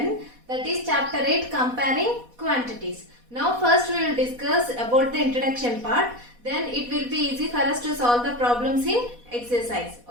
that is chapter 8, comparing quantities. Now first we will discuss about the introduction part, then it will be easy for us to solve the problems in exercise.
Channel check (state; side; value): late; left; 4.1 ms